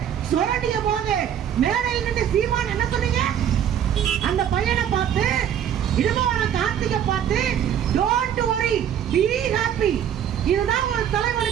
சுரண்டிய போது மேடையில் நின்று சீமான் என்ன சொன்னீங்க? அந்த பையனை பார்த்து, இடுமவன கார்த்திகை பார்த்து, டோன்ட் வரி பி ஹாப்பி. இதுதான் ஒரு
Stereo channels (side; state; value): left; quieter; 9.5 dB